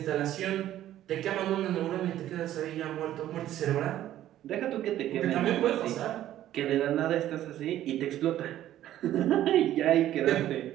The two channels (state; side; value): quieter; left; 12.8 dB